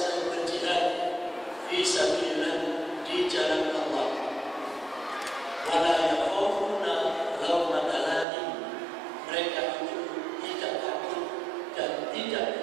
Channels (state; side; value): drops out; left; at 8.2 s